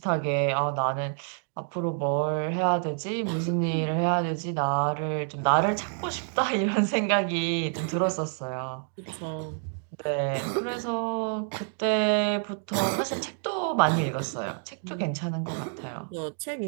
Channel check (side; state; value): left; silent; 59 dB below the other